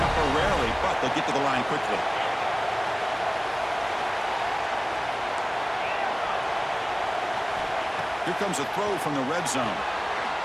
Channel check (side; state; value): both; identical; correlation 1.00